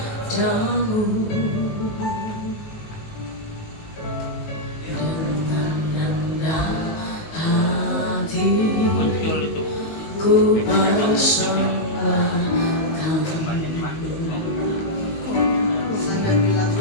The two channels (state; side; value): late; right; 19 ms